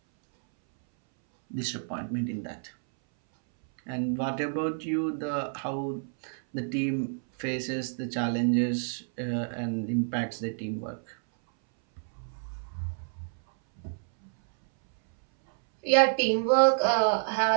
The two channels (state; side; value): silent; left; 59 dB below the other